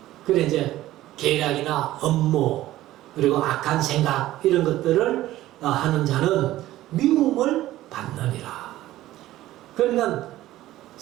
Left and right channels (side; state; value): left; quieter; 15.2 dB